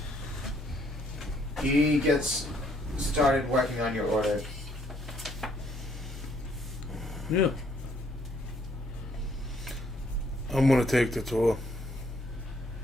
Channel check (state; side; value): normal; both; correlation 0.67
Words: he gets started working on your order. Yeah. I'm gonna take the tour.